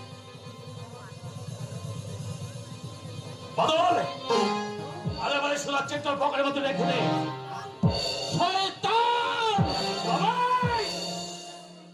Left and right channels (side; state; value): both; identical; correlation 1.00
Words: বাদল আরে মানে শোনাচ্ছে তোর পকেটের মধ্যে রেখে দে। শয়তান! সবাই